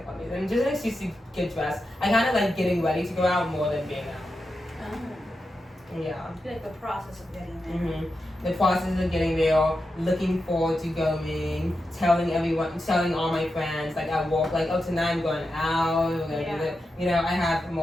funny. And just an excuse to get dressed. I kind of like getting ready to go out more than being out. Yeah. Like the process of getting there. The process of getting there, looking forward to going, telling all my friends, like I walk, like, oh, tonight I'm going out, we're gonna do this. You know, I have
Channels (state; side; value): normal; both; correlation 0.89